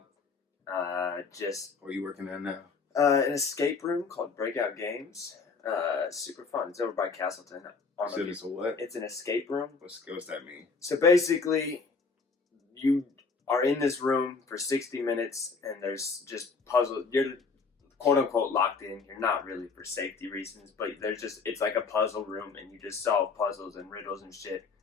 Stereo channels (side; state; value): right; quieter; 4.7 dB